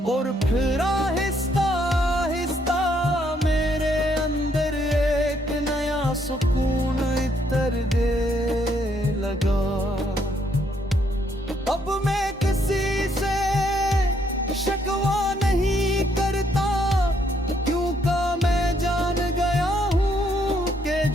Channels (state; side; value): normal; both; correlation 0.71